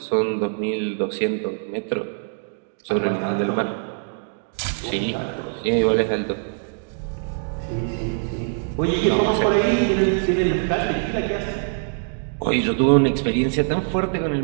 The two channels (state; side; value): silent; left; 63 dB below the other